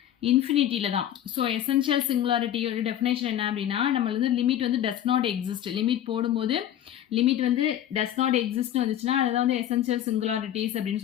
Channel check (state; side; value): quieter; right; 11.2 dB